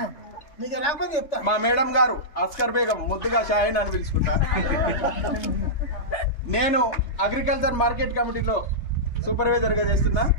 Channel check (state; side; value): late; right; 3.3 ms